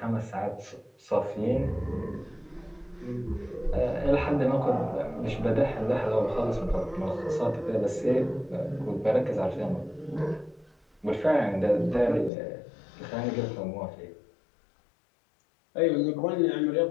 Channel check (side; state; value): right; drops out; at 12.3 s